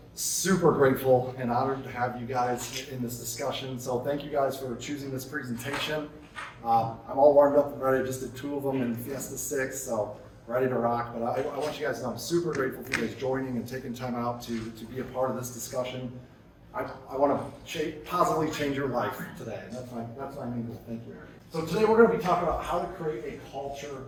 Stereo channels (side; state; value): both; identical; correlation 1.00